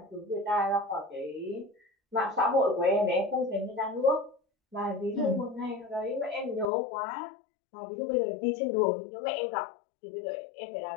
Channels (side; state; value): right; drops out; at 6.7 s